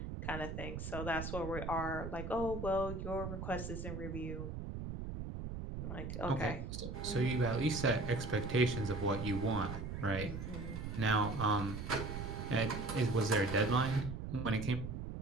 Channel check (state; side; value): noise; right; rumble, 6 dB below the sound